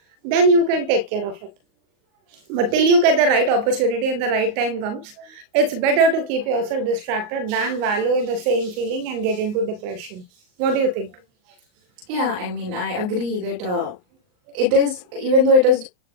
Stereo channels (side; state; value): left; late; 38 ms